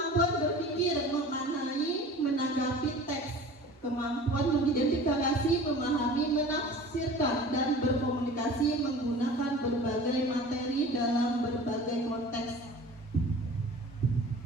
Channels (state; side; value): normal; both; correlation 0.41